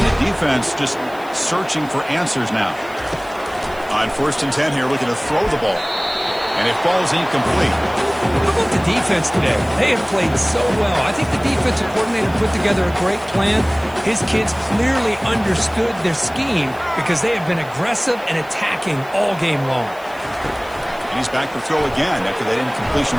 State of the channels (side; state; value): left; noise; hiss, 24 dB below the sound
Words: the defense just searching for answers now. On 1st and 10 here, looking to throw the ball. And it falls incomplete. How about the defense today? They have played so well. I think the defensive coordinator put together a great plan. His kids clearly understood their scheme because they have been aggressive and attacking all game long. And he's back to throw again after that incompletion